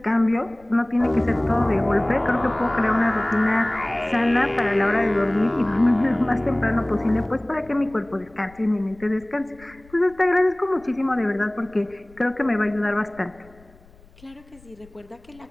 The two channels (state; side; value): noise; left; rumble, 26 dB below the sound